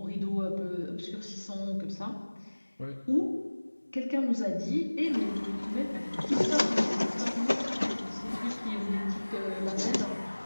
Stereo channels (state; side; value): inverted; both; correlation -1.00